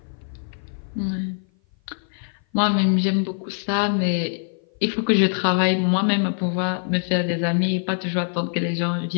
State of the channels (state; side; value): silent; right; 56 dB below the other